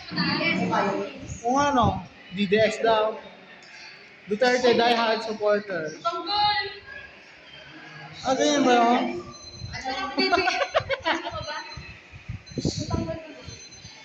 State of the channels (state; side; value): identical; both; correlation 1.00